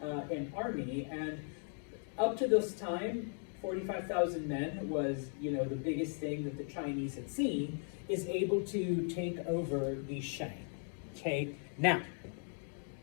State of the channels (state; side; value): silent; right; 53 dB below the other